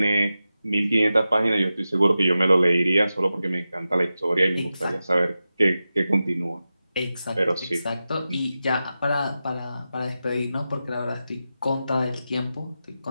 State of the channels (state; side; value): inverted; both; correlation -0.92